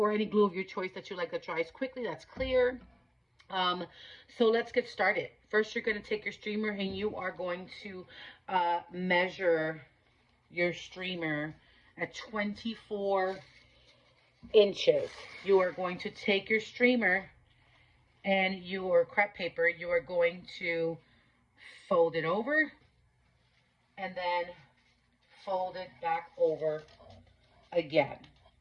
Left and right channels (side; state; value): both; identical; correlation 1.00